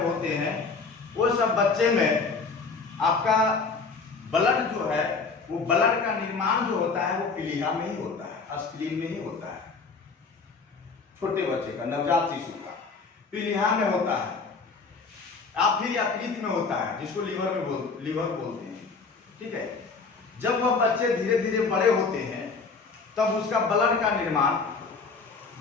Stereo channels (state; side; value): quieter; right; 4.6 dB